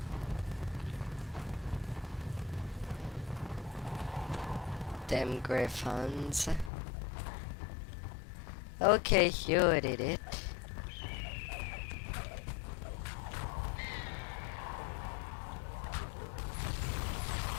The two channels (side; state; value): right; drops out; at 6.7 s